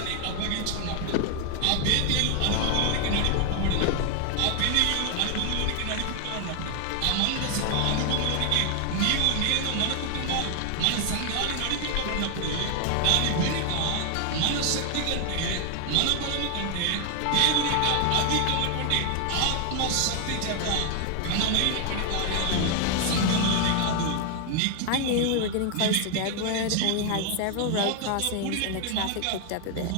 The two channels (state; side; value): different; both; correlation 0.00